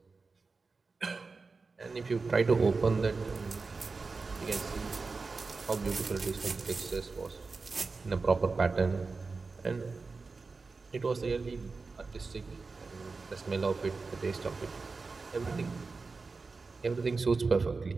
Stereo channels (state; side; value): quieter; left; 4.2 dB